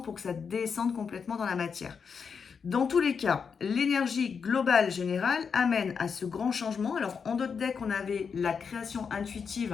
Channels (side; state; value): right; quieter; 6.1 dB